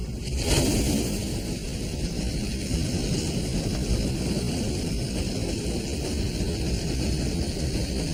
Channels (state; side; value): identical; both; correlation 1.00